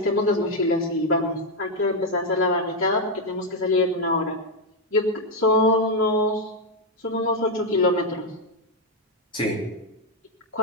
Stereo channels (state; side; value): normal; both; correlation 0.02